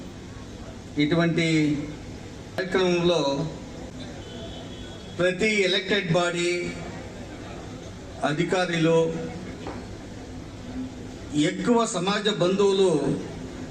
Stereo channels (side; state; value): both; identical; correlation 1.00